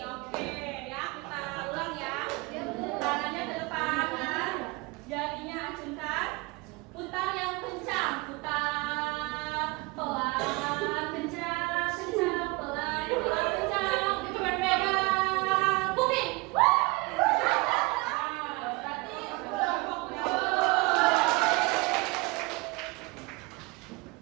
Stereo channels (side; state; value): left; quieter; 25.2 dB